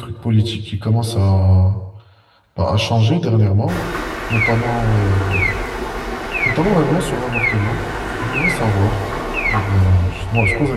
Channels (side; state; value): both; identical; correlation 1.00